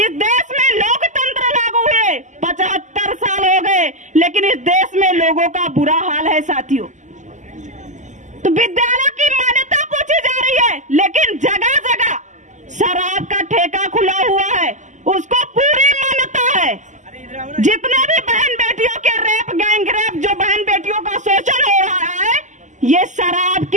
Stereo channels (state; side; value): late; left; 0.35 ms